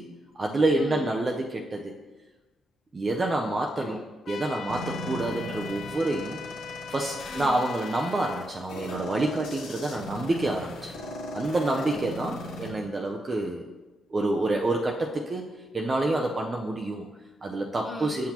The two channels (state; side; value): normal; both; correlation 0.84